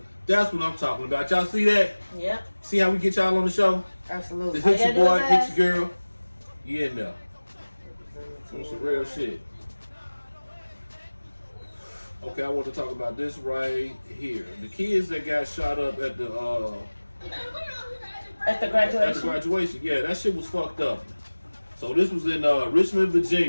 That's what I'm talking about. Y'all see that? Yep. See how we get y'all on the show? Absolutely. Hit your boy, hit your girl. You in there. On some real shit. Okay, I want to talk about this right here. The kids that got shot up at the graduation. At the graduation, yeah, that shit was fucked up. So this was in Richmond,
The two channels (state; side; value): inverted; both; correlation -1.00